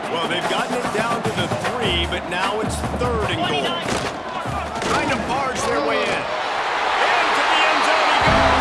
Well, they've gotten it down to the 3, but now it's 3rd and goal. Trying to barge their way in. Into the end zone he goes.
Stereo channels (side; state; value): both; identical; correlation 1.00